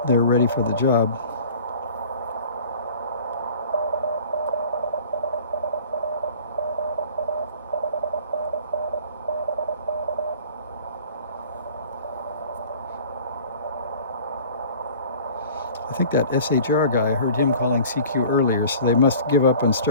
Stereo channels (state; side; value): inverted; both; correlation -0.45